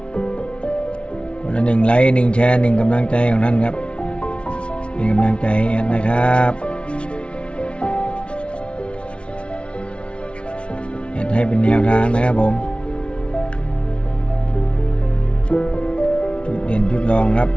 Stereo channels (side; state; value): right; late; 0.059 ms